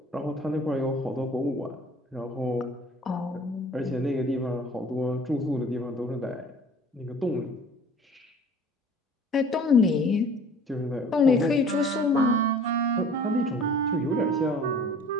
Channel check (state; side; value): normal; both; correlation 0.49